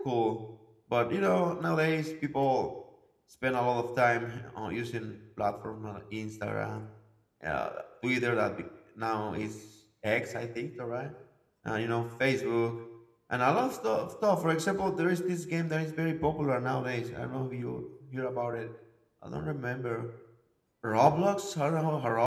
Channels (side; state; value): both; identical; correlation 1.00